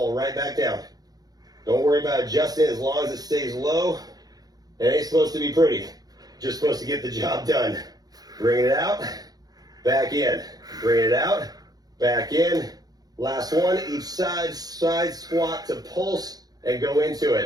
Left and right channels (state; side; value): late; left; 0.19 ms